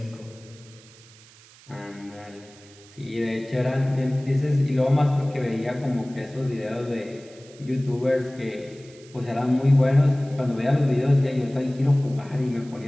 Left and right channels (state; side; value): noise; right; hiss, 24 dB below the sound